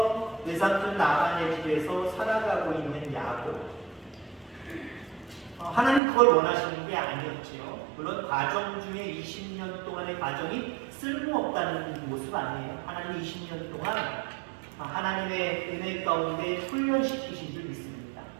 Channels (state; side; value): drops out; left; at 6.0 s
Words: 외삼촌 라반의 집에서 살아가고 있는 야곱. 하나님 그걸 원하시는 게 아니었지요. 물론 과정 중에 20년 동안의 과정이 쓸모없다는 모습 아니에요. 하나님 20년 동안 하나님의 은혜 가운데 훈련시키신 줄 믿습니다.